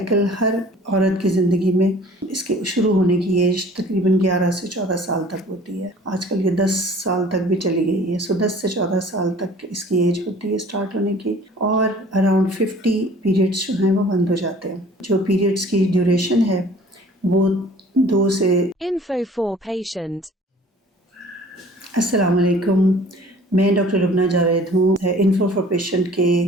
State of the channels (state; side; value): normal; both; correlation 0.50